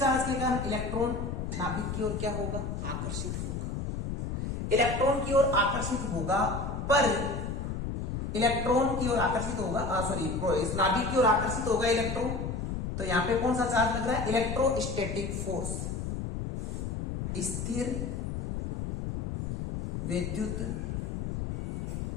के कारण इलेक्ट्रॉन नाभिक की ओर क्या होगा? आकर्षित होगा। इलेक्ट्रॉन की ओर आकर्षित होगा, पर इलेक्ट्रॉन की ओर आकर्षित होगा, इस नाभिक की ओर आकर्षित होगा इलेक्ट्रॉन। तो यहां पे कौन सा चार्ज लग रहा है? इलेक्ट्रोस्टैटिक फोर्स, स्थिर विद्युत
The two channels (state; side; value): noise; left; rumble, 3 dB below the sound